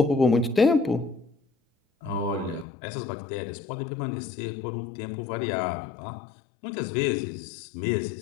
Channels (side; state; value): right; drops out; at 2.7 s